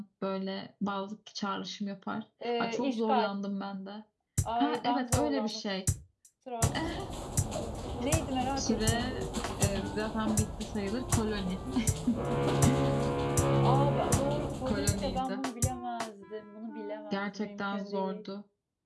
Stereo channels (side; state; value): both; identical; correlation 1.00